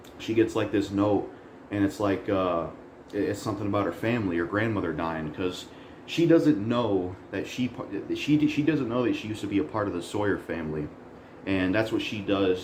she gets like this note, and it's like it's something about her family, her grandmother dying, because she doesn't know that she doesn't know that she used to be a part of the Sawyer family. And that's what she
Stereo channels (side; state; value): both; identical; correlation 1.00